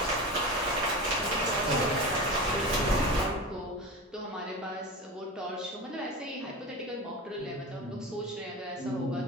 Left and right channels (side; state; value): both; normal; correlation 0.27